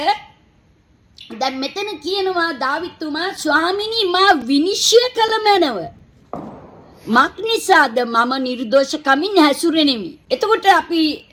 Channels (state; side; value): identical; both; correlation 1.00